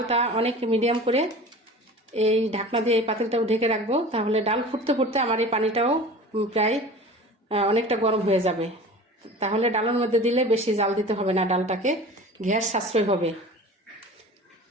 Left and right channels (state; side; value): normal; both; correlation 0.39